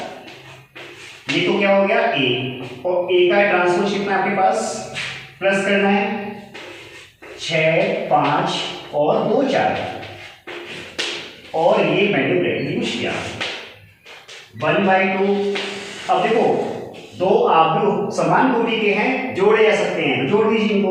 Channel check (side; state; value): both; identical; correlation 1.00